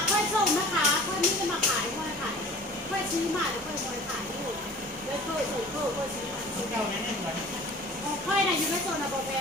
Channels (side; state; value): both; normal; correlation 0.44